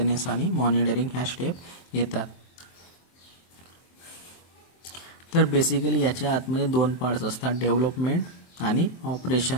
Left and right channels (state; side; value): late; right; 23 ms